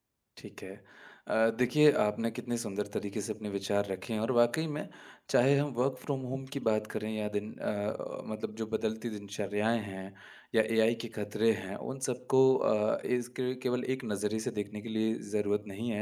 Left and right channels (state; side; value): identical; both; correlation 1.00